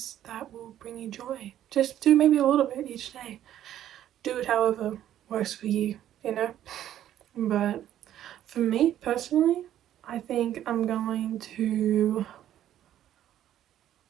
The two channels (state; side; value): quieter; left; 11.7 dB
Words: that will bring you joy. Just do maybe a little bit each day. Do it however works for you, But for me personally, I think I'm gonna